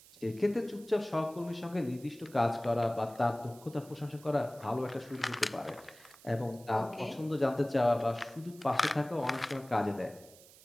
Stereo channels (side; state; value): right; noise; hiss, 22 dB below the sound